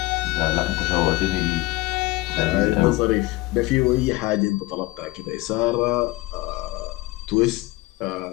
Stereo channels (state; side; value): quieter; right; 20.5 dB